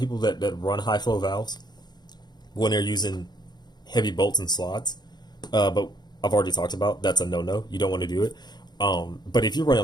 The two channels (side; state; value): right; late; 0.20 ms